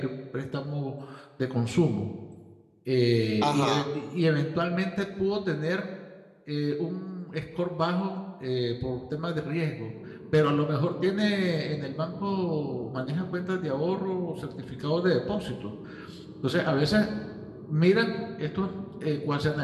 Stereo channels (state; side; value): identical; both; correlation 1.00